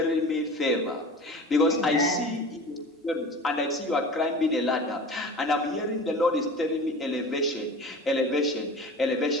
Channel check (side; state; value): both; normal; correlation 0.37